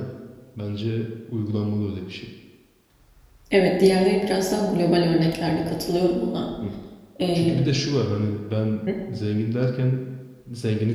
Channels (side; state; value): both; identical; correlation 1.00